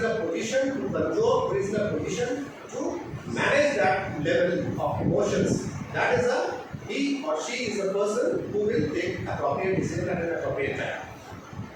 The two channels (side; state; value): both; identical; correlation 1.00